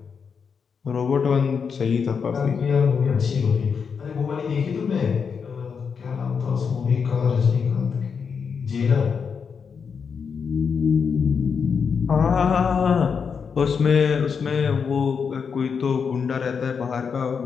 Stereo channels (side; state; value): right; quieter; 6.1 dB